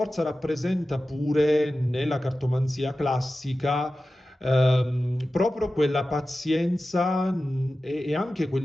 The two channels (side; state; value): both; normal; correlation 0.94